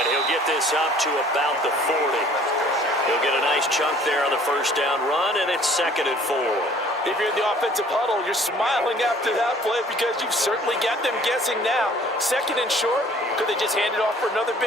he'll get this up to about the 40. He'll get a nice chunk there on the first down run, and it's 2nd and 4. If you're in the offensive huddle, you're smiling after that play because you've certainly got them guessing now. 2nd and short, could they just hand it off for another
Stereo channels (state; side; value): normal; both; correlation 0.54